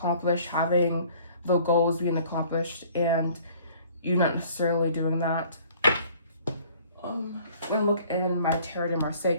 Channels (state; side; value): inverted; both; correlation -0.55